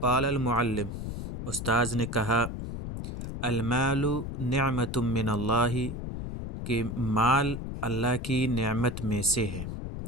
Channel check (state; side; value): noise; left; rumble, 6 dB below the sound